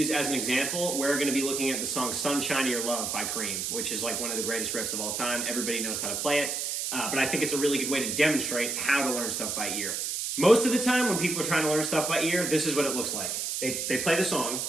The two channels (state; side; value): noise; right; hiss, 2 dB below the sound